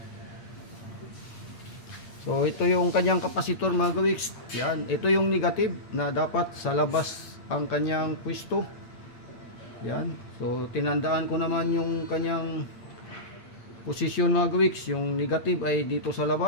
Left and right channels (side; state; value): right; late; 8.6 ms